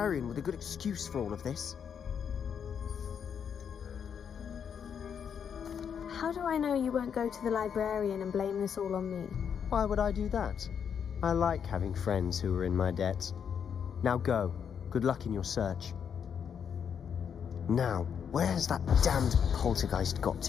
with a good excuse for all of this. How do I know you won't go to the librarian and blame this all on me? Why would I do that? I like having friends who are in my debt. Now go. Good luck in your search. Now, where has that damned poltergeist got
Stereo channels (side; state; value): right; quieter; 7.5 dB